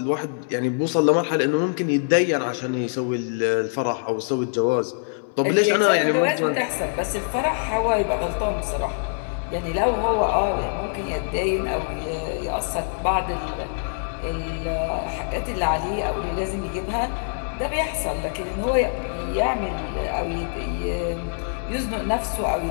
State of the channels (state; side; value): silent; right; 62 dB below the other